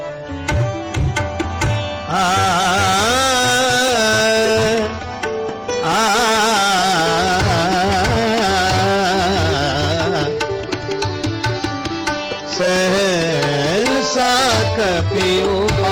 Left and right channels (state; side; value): identical; both; correlation 1.00